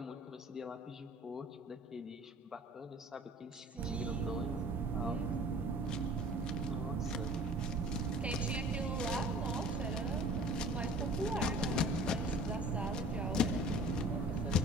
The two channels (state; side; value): normal; both; correlation 0.47